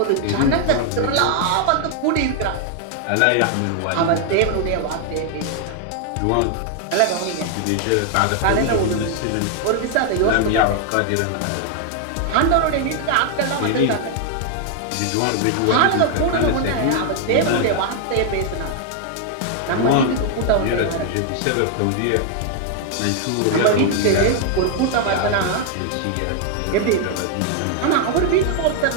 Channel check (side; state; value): both; different; correlation 0.00